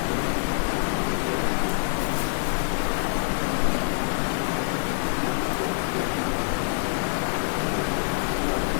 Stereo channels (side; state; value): right; silent; 61 dB below the other